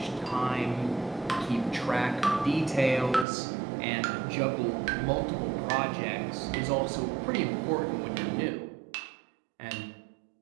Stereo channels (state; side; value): drops out; left; at 3.2 s